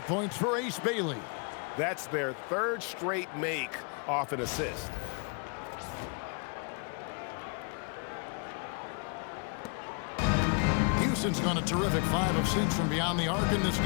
points for Ace Bailey. That's their 3rd straight make off an assist. Houston's gone a terrific 5 of 6 from beyond the arc in this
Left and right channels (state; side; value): quieter; right; 35.7 dB